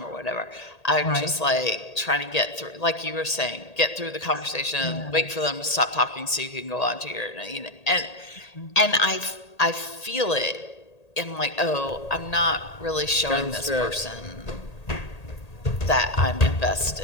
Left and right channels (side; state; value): right; late; 1.8 ms